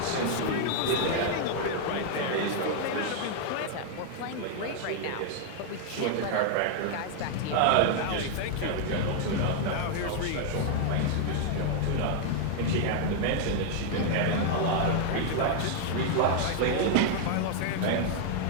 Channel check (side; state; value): both; different; correlation 0.00